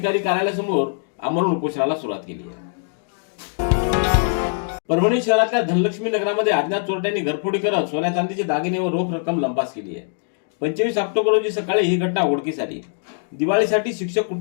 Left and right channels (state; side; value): silent; right; digital silence